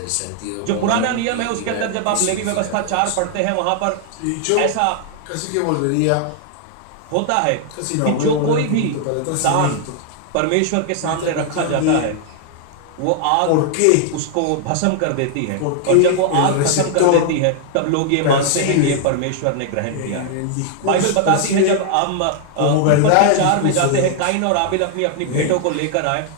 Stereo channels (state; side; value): different; both; correlation 0.00